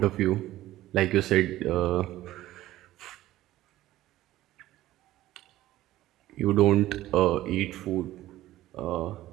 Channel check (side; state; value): left; quieter; 15.2 dB